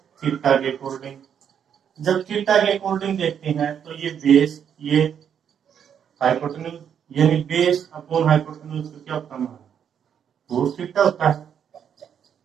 थीटा के अकॉर्डिंग। जब थीटा के अकॉर्डिंग देखते हैं तो ये बेस, ये हाइपोटेन्यूज, यानी बेस अपॉन हाइपोटेन्यूज का क्या होता है? कोस थीटा होता है।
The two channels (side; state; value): left; quieter; 8.3 dB